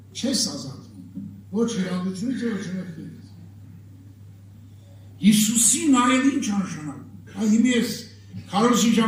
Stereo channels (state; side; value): identical; both; correlation 1.00